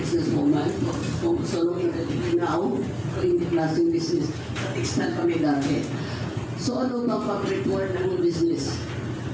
so long in the now in the classing business. Sa textile kami dati. So ano ba favorite word ng business?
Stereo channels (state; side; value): identical; both; correlation 1.00